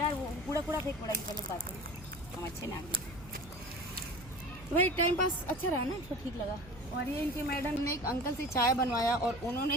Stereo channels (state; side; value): noise; right; hum, 18 dB below the sound